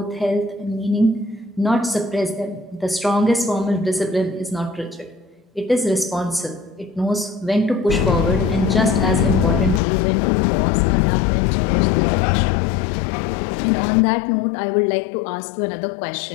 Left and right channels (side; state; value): right; drops out; at 9.8 s